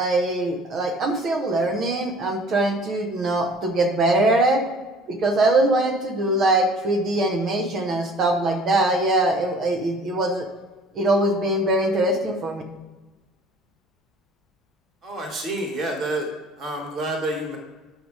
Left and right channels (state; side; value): normal; both; correlation 0.50